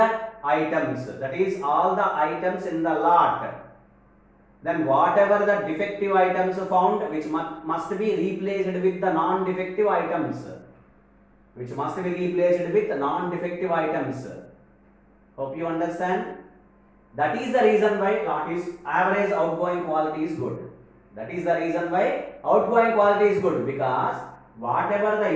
items, that is all the items in the lot. Then whatever the defective items found, which must be replaced with the non-defective items. Hope you understand. That is the reason why lot is average outgoing quality is good. That is the reason why outgoing quality is good, because whatever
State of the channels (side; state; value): both; identical; correlation 1.00